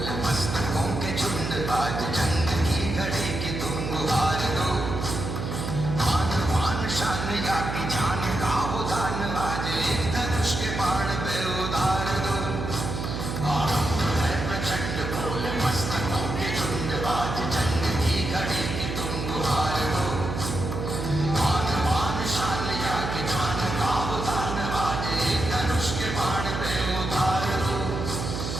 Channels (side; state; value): right; noise; hum, 4 dB below the sound